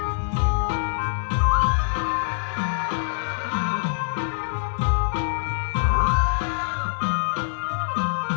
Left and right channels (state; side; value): silent; right; digital silence